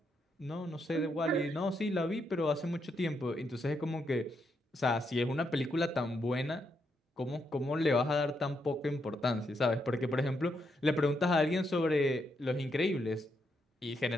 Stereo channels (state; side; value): normal; both; correlation 0.79